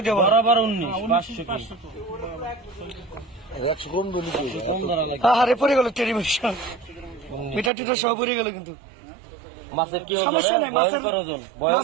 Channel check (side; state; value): left; drops out; at 7.7 s